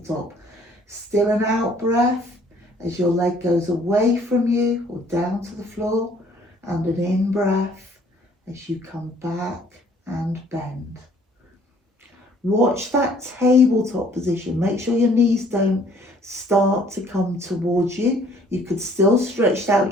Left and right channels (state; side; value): normal; both; correlation 0.58